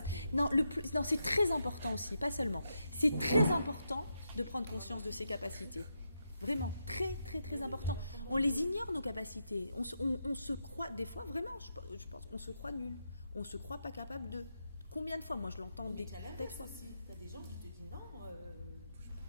Non, non, c'est très important aussi, pas seulement. C'est très important de prendre conscience de ses capacités. Vraiment, très, très, très important. On les ignore, nos capacités. On se croit, des fois, vraiment, je pense, on se croit nul. On se croit pas capable de... Combien de fois, moi, je l'entends des fois. Tu as des gens qui te disent non,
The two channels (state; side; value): inverted; both; correlation -0.83